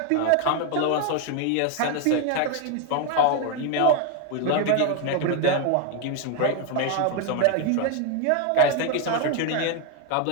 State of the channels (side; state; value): both; different; correlation 0.01